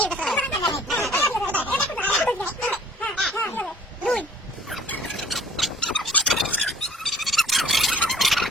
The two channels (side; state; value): both; normal; correlation 0.53